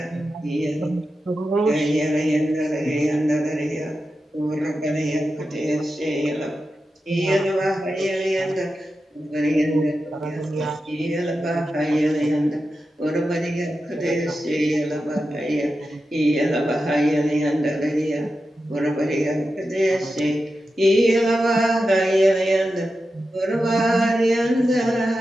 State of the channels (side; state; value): both; normal; correlation 0.90